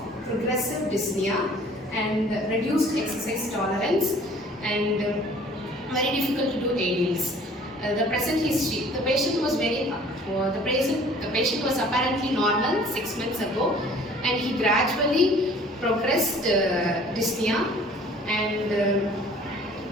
progressive dyspnea, and reduced exercise tolerance, and very difficult to do aerials. The present history: the patient was the patient was apparently normal 6 months ago, and he gradually progressed dyspnea and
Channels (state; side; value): normal; both; correlation 0.51